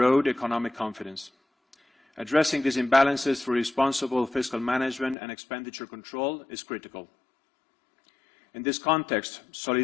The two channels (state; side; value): drops out; right; at 5.2 s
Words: economic confidence. Addressing these imbalances through responsible fiscal management and expenditure control is critical. In this context,